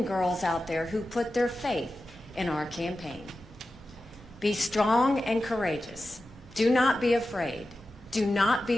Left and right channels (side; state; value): both; normal; correlation 0.93